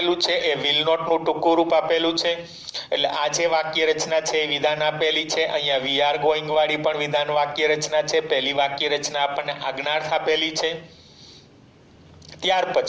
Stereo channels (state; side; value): identical; both; correlation 1.00